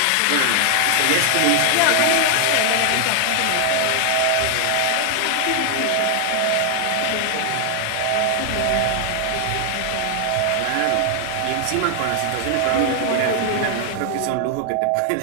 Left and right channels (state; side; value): different; both; correlation 0.00